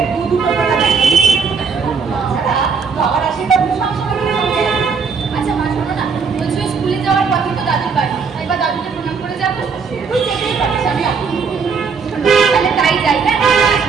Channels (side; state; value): left; quieter; 5.5 dB